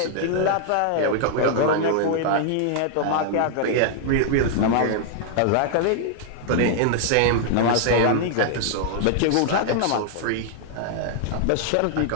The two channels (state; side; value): different; both; correlation -0.01